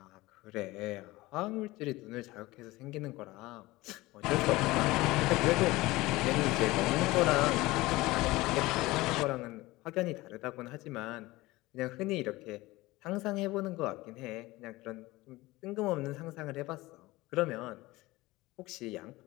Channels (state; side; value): quieter; right; 19.8 dB